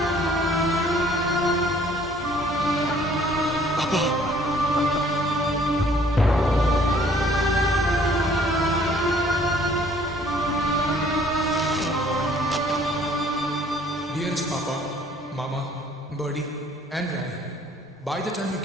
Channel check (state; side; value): normal; both; correlation 0.58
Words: Dearest Papa, Mama, Birdie, and Rai, by the time you